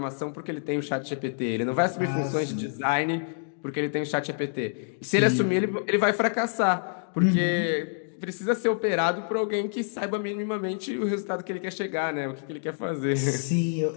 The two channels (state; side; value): silent; right; digital silence